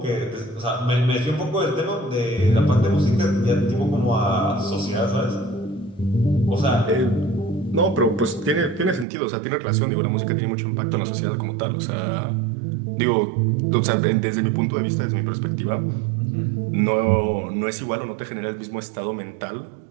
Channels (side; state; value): left; drops out; at 9.1 s